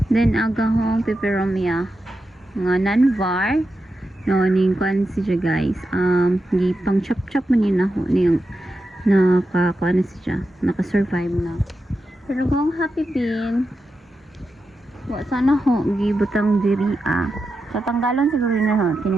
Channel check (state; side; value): normal; both; correlation 0.89